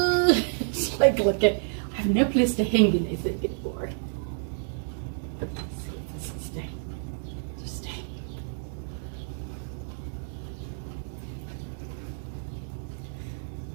like, look at, I have no place to hang anything anymore. Let's see if this will stay. Just stay.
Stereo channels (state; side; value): silent; left; digital silence